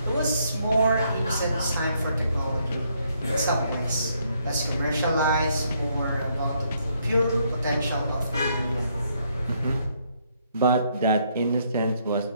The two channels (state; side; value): inverted; both; correlation -0.72